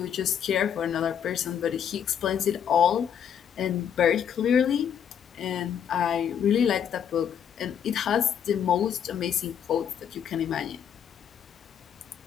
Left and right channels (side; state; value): right; quieter; 8.5 dB